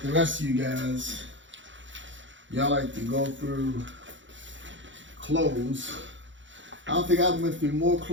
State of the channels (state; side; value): late; left; 0.55 ms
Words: the rest of you guys, y'all like to go through clothes. I don't think I went through more